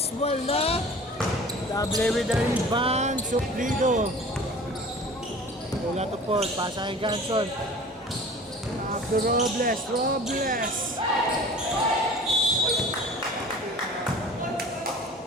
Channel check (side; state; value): both; normal; correlation 0.43